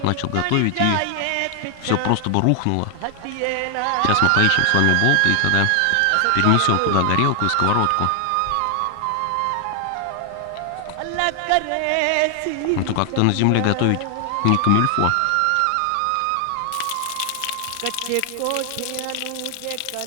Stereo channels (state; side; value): different; both; correlation 0.00